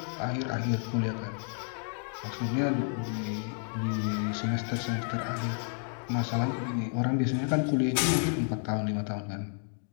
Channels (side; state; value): right; silent; 57 dB below the other